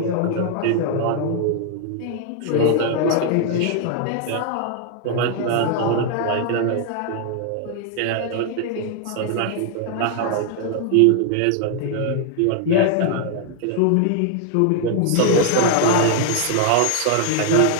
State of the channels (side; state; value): both; different; correlation 0.00